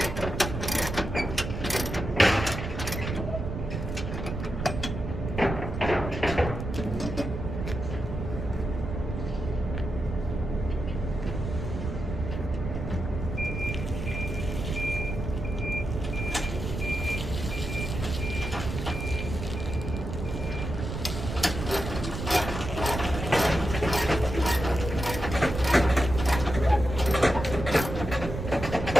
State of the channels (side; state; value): right; noise; rumble, 5 dB below the sound